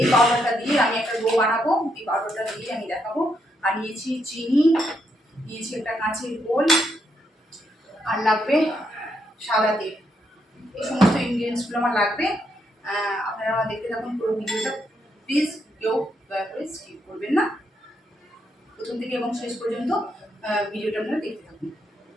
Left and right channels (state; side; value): normal; both; correlation 0.78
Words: পাউডারটা দিয়ে আমি একটা ডো বানাবো। এই পাউডারটা দিয়ে আমি দেখাবো। আর নিয়েছি চিনি, নিয়েছি একটা কাঁচের গোল, আর লাগবে সাদা তেল। এই সমস্ত ইনগ্রিডিয়েন্টসগুলো আমার লাগবে। আপনারা আমার দেখতে থাকুন পুরো ভিডিওটা। প্লিজ কেউ দয়া করে স্কিপ করবেন না, প্রথম থেকে এবং শেষ পর্যন্ত ভিডিওটা আপনারা দেখতে থাকুন।